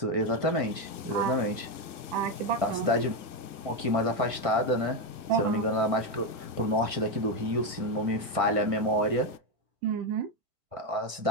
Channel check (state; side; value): late; left; 1.6 ms